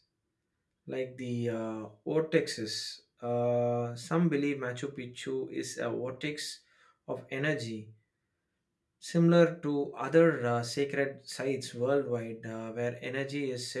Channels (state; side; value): identical; both; correlation 1.00